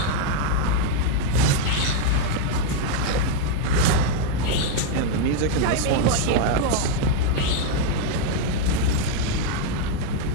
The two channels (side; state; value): both; different; correlation 0.00